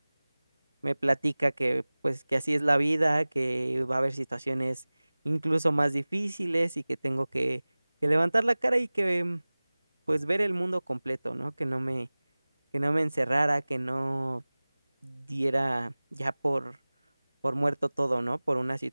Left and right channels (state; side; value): inverted; both; correlation -1.00